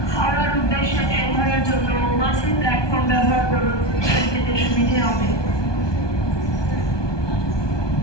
হাওড়ার উদ্দেশ্যে ট্রেন ধরার জন্য মাঝের প্ল্যাটফর্ম ব্যবহার করুন, ট্রেন পেতে সুবিধে হবে।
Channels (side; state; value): right; late; 1.2 ms